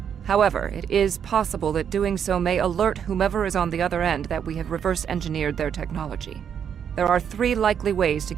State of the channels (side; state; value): left; quieter; 8.1 dB